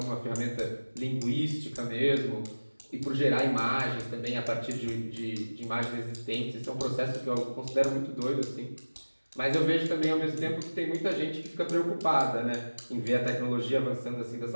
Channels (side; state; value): both; inverted; correlation -1.00